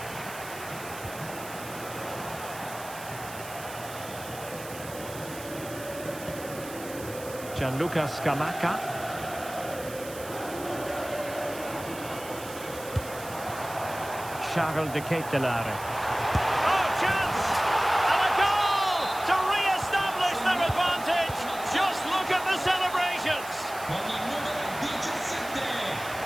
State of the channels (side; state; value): right; noise; hiss, 14 dB below the sound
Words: Gianluca Scamacca. Charles de Ketelare. Oh, chance! And a goal to re-establish their advantage. Just look at the celebrations. Con il numero 17,